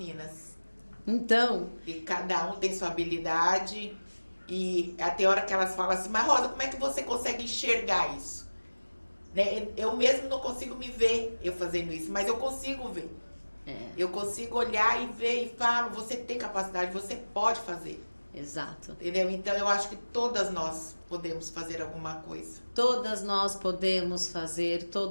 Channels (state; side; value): inverted; both; correlation -1.00